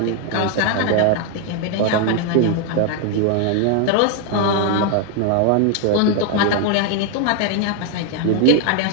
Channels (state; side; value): different; both; correlation 0.01